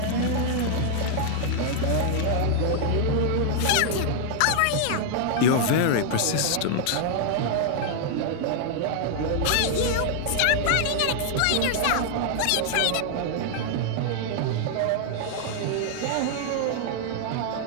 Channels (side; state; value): both; different; correlation -0.01